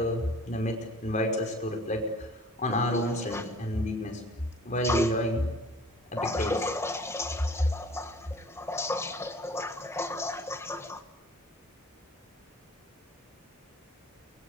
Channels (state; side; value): normal; both; correlation 0.49